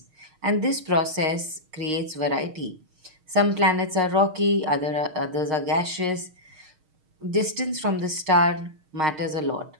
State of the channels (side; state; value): left; late; 6.5 ms